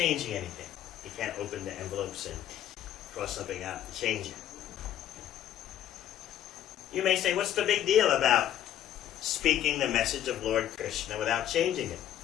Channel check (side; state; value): right; quieter; 11.1 dB